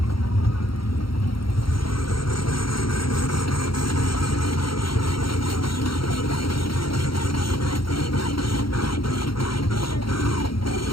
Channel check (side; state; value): right; late; 0.74 ms